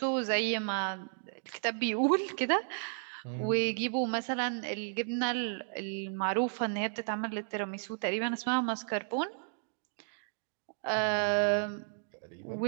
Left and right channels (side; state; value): left; silent; digital silence